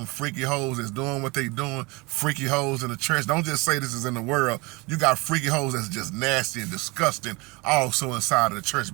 freaky hoes that's doing what they doing, freaky hoes in the church, don't just say this is in the world. You got freaky hoes that's just nasty and disgusting also inside of the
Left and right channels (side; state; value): left; quieter; 25.9 dB